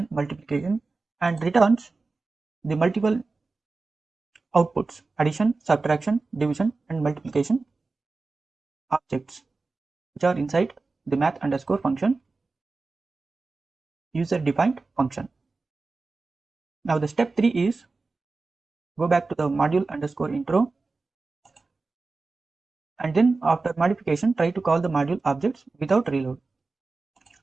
multiplication, and returns the multiple outputs, addition, subtraction, division, and multiplication objects, which are inside the math underscore function user defined function. Now the step 3 is go back to the module underscore intro, and then after modification try to call the module objects without reload.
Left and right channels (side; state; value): left; quieter; 3.8 dB